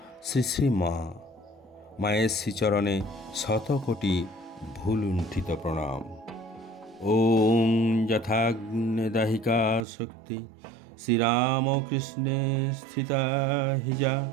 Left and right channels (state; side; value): drops out; left; at 9.9 s